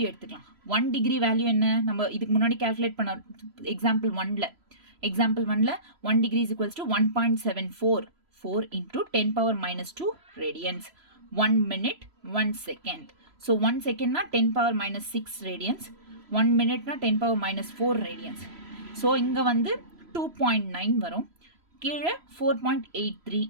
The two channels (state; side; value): late; left; 3.0 ms